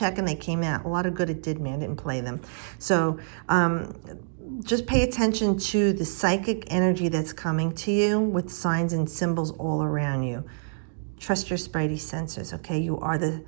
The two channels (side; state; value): left; silent; digital silence